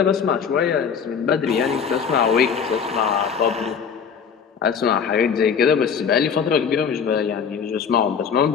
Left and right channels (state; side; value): quieter; right; 6.8 dB